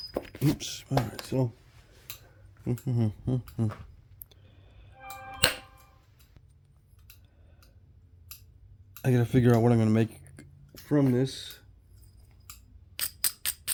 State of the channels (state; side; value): identical; both; correlation 1.00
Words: Oops. All right. So. I gotta figure out what I'm gonna make from this.